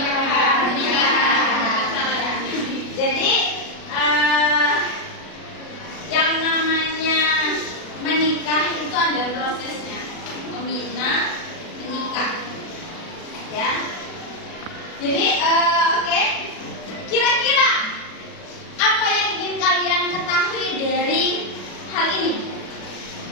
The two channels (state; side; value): late; right; 36 ms